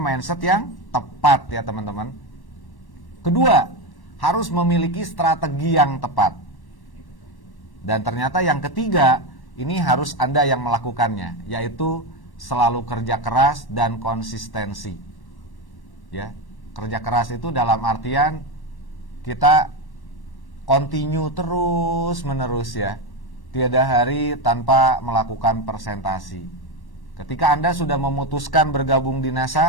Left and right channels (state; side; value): late; right; 1.1 ms